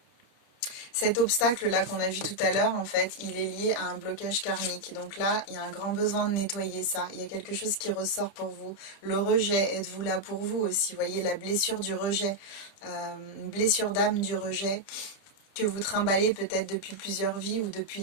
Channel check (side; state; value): right; late; 30 ms